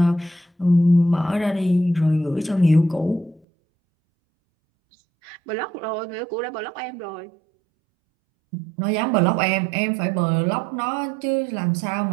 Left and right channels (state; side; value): drops out; left; at 3.4 s